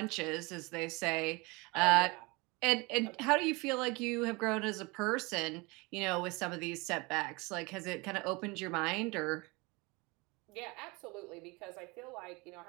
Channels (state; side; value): quieter; left; 26.0 dB